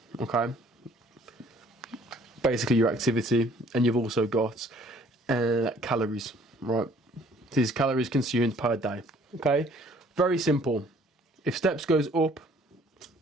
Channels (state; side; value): normal; both; correlation 0.58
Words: okay? Basically your activity, and you've also got calories, right? These calories consumed per day, okay? Very simple. If steps goes up,